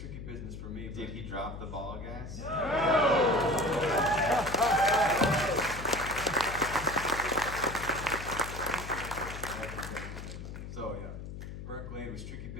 business for me. Did he drop the ball, guys? So yeah, Burnt Glade was tricky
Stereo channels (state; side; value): noise; left; hum, 9 dB below the sound